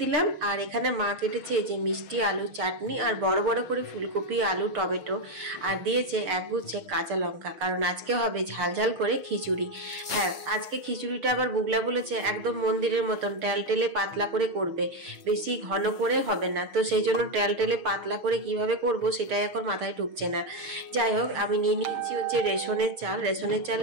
দিলাম। আর এখানে মা কেটেছে যে মিষ্টি আলুর চাটনি, আর বড় বড় করে ফুলকপি, আলু, টমেটো, আর দিয়েছে একগুচ্ছে কাঁচা লঙ্কা, কারণ আজকে হবে ঝাল ঝাল করে খিচুড়ি। হ্যাঁ, আজকে খিচুড়িটা আবার বুগলা বলেছে একদম মন্দিরের মতন টেলটেলে পাতলা করে করবে, বেশি ঘন করে হবে না। তো সেই জন্য টেলটেলে পাতলা করে কিভাবে করব সেটাই এখন মাথায় ঢুকছে না। যাই হোক, আমি নিয়ে নিচ্ছি হচ্ছে রেশনের চাল। রেশনের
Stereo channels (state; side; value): late; left; 6.7 ms